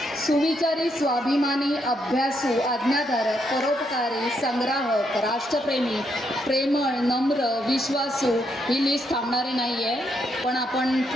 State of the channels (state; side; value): normal; both; correlation 0.77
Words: सुविचारी, स्वाभिमानी, अभ्यासू, आज्ञाधारक, परोपकारी, संग्राहक, राष्ट्रप्रेमी, प्रेमळ, नम्र, विश्वासू ही लिस्ट थांबणारी नाही आहे। पण आपण